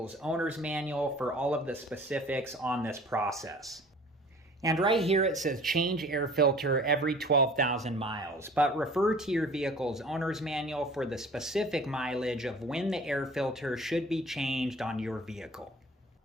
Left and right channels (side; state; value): both; normal; correlation 0.47